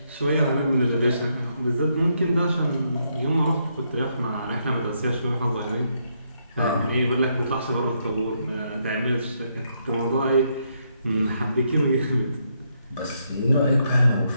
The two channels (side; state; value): both; inverted; correlation -0.77